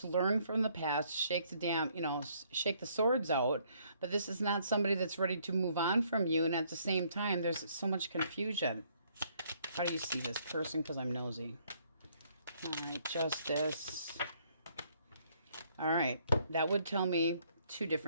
learn from the past, shake the swords out. But this is not somebody that's ready to move on from you, and at the same time there's so much confusion. How do you see this person? Because I'm nosy. All right, Justice. All right, that would tell me 2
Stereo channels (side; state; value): both; inverted; correlation -0.67